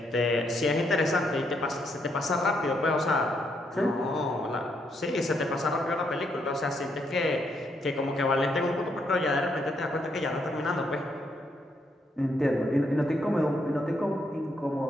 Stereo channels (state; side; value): normal; both; correlation 0.76